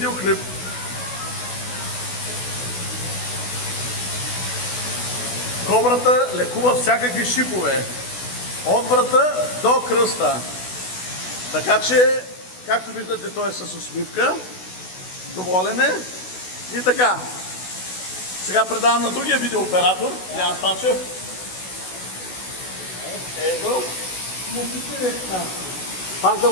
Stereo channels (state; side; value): late; right; 16 ms